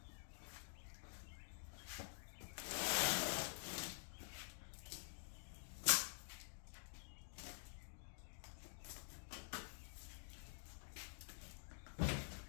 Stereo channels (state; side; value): silent; right; digital silence